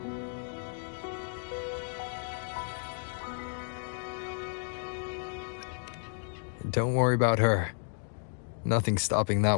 Don't worry about her. Nothing's stopping that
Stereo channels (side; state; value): right; silent; digital silence